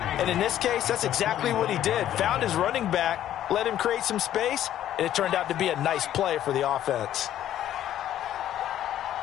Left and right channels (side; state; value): right; quieter; 11.8 dB